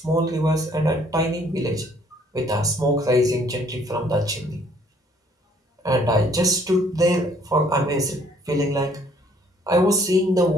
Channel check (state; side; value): normal; both; correlation 0.61